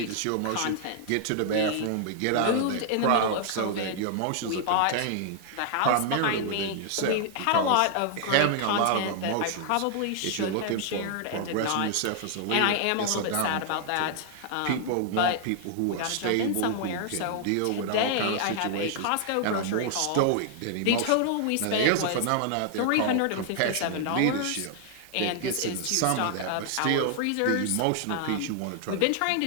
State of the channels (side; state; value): both; different; correlation 0.00